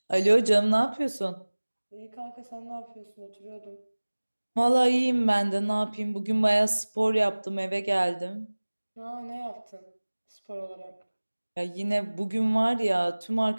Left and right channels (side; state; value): both; inverted; correlation -1.00